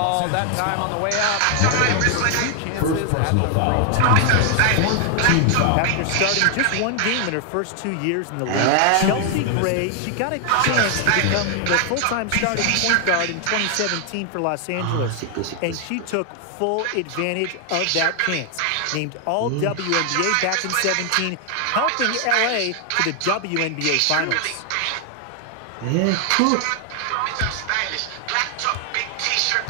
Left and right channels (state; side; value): different; both; correlation 0.00